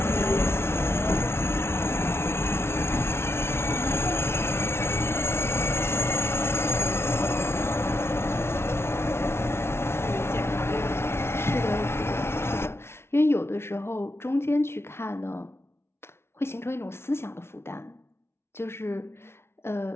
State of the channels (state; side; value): late; right; 0.12 ms